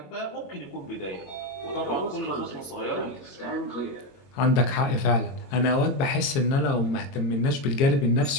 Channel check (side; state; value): right; late; 22 ms